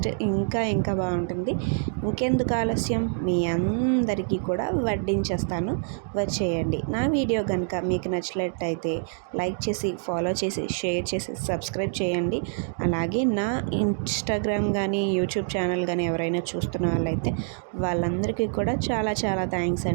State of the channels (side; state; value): left; silent; digital silence